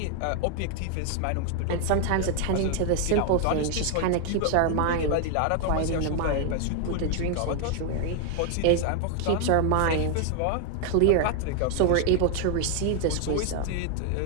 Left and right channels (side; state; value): both; different; correlation 0.00